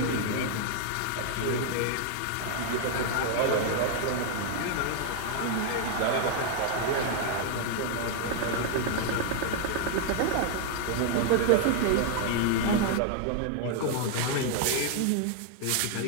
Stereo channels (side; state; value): both; different; correlation 0.00